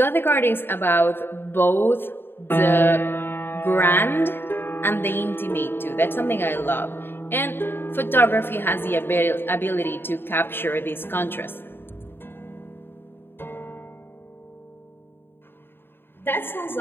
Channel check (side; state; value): right; late; 0.10 ms